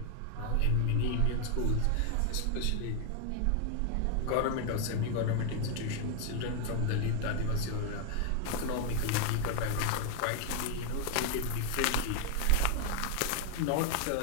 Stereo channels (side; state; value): both; different; correlation 0.01